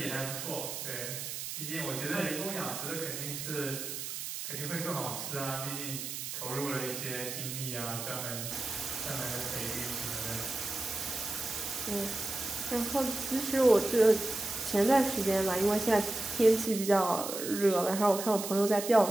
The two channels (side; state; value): right; noise; hiss, 6 dB below the sound